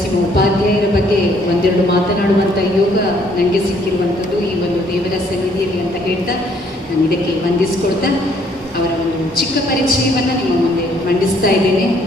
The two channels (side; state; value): both; normal; correlation 0.65